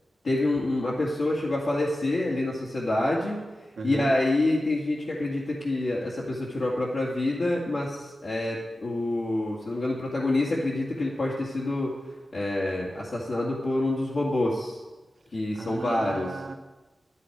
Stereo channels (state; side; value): normal; both; correlation 0.93